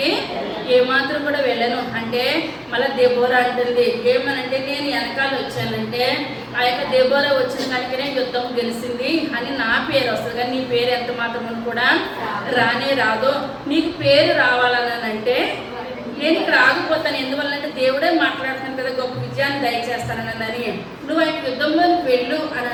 ఏమాత్రం కూడా వెళ్ళను అంటే మళ్ళీ దెబోరా అంటుంది ఏమనంటే, నేను వెనకాల వచ్చానంటే ఆ యొక్క దెబోరా వచ్చిన దానికనే యుద్ధం గెలిచింది అని నా పేరు వస్తుంది, కానీ నీ పేరు ఎంత మాత్రం కూడా రానే రాదు. నీకు పేరు రావాలనంటే నేను ఇక్కడ ఆగిపోతాను. ఎందువల్లంటే దేవుడే మాట్లాడుతాను కదా, గొప్ప విజయాన్ని దయచేస్తానని. నువ్వు ఆయన యుద్ధంలోకి వెళ్ళు అని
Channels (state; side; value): identical; both; correlation 1.00